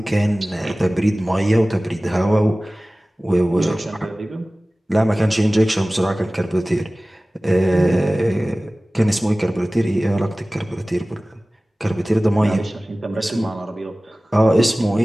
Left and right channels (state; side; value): normal; both; correlation 0.98